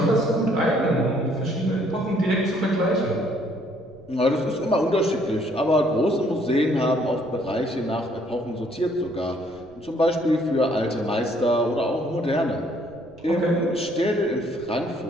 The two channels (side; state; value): right; noise; rumble, 26 dB below the sound